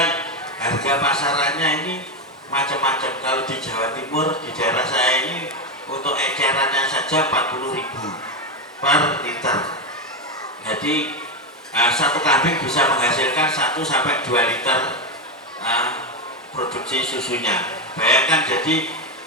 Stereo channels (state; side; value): normal; both; correlation 0.10